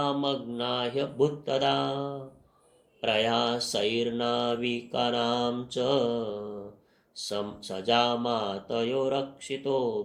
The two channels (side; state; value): both; identical; correlation 1.00